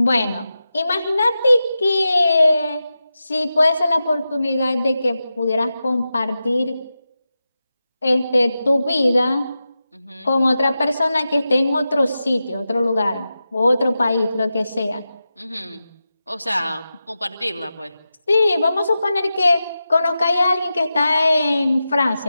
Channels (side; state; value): both; inverted; correlation -0.92